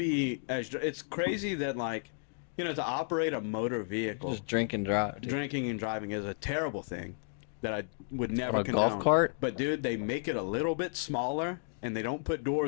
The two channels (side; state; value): right; silent; digital silence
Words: as. It's crazy that like, to operate a motor vehicle, just drink and drive. dude. drinking and driving is a terrible thing that I would never A golf condone. cart? But dude, they make it a little bit smaller and they don't put